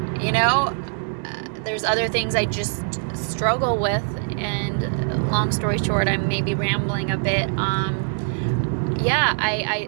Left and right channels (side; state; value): left; silent; 62 dB below the other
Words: there's other things I just struggle with, and long story short, I'm maybe rambling a bit.